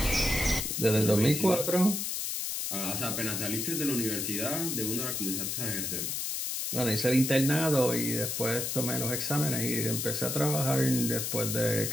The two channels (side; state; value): left; noise; hiss, 2 dB below the sound